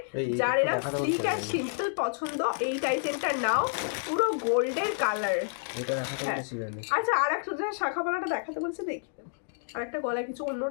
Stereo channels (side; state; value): right; silent; digital silence